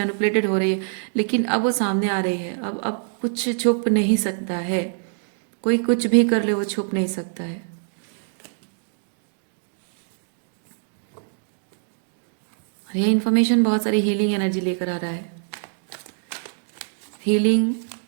हो रही है, लेकिन अब वो सामने आ रही है। अब कुछ छुप नहीं सकता है, कोई कुछ भी कर ले वो छुप नहीं सकता है। और ये इन्फॉर्मेशन बहुत सारी हीलिंग एनर्जी लेकर आ रहा है। Healing,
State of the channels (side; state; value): left; silent; digital silence